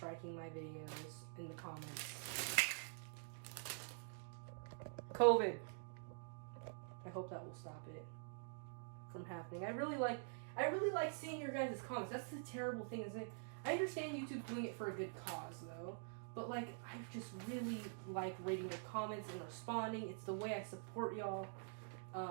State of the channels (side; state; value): left; silent; digital silence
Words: my videos in the comments. COVID. I hope that will stop it from happening. I really like seeing your guys' comments. That's the terrible thing, is that I understand YouTube doing it for a good cause though, but like I just really like reading your comments and responding. It's the way I support y'all.